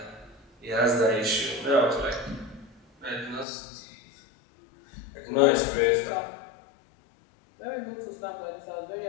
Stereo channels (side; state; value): right; drops out; at 3.5 s